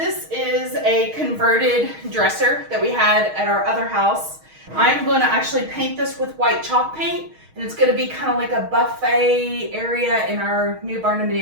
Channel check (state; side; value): late; left; 6.4 ms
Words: is a converted dresser that we had at our other house. I'm going to actually paint this with white chalk paint, and it's going to be kind of like a buffet area in our new